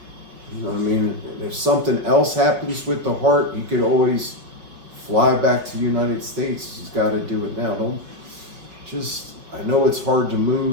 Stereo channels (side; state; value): left; late; 5.4 ms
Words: You know what I mean? If something else happens with the heart, you could always fly back to the United States. He's got to do it now. I know it's hard to